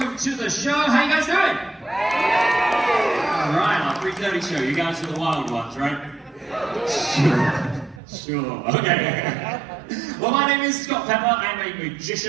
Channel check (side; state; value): left; drops out; at 8.0 s